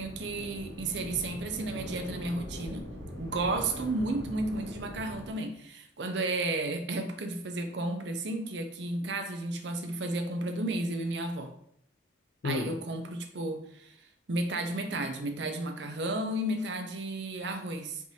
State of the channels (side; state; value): both; normal; correlation 0.44